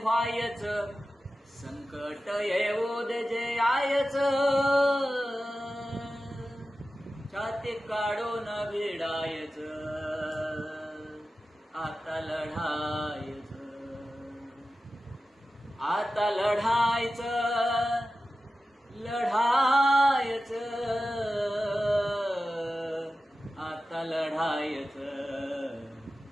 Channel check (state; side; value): normal; both; correlation 0.94